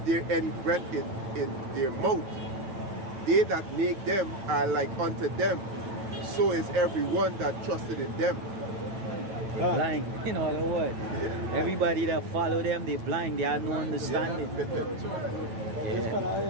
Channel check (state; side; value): late; left; 9.1 ms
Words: any breath in their mouth. They that make them are like unto them. So is everyone that trusted in them. Blind, in other words. Everybody that follow them, they blind, they have no understanding. This